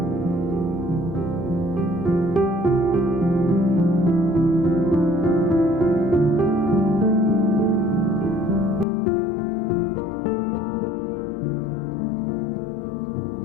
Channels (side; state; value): right; drops out; at 8.8 s